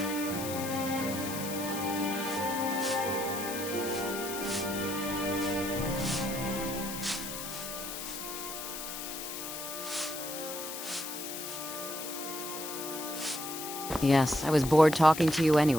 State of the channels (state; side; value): noise; left; hiss, 7 dB below the sound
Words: Yes, I was bored talking to you